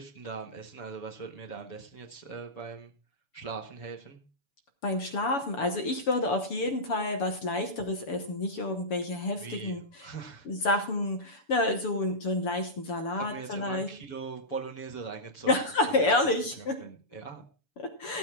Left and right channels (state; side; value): late; right; 7.0 ms